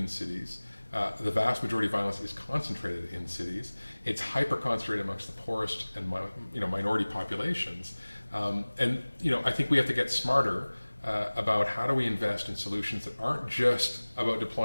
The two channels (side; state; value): both; inverted; correlation -1.00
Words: cities. The vast majority of violence is concentrated in cities. It's hyper-concentrated amongst the poorest and minority populations. I think we have to get smarter about how do we invest in solutions that aren't just about